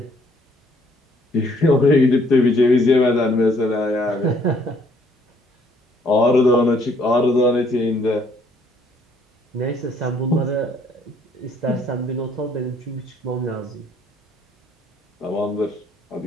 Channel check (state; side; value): normal; both; correlation 0.64